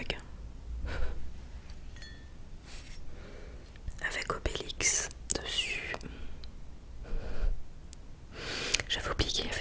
avec Obélix dessus. J'avais oublié qu'il y avait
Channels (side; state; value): both; identical; correlation 1.00